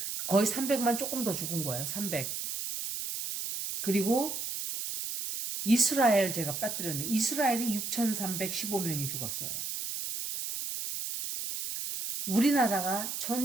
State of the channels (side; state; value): right; noise; hiss, 4 dB below the sound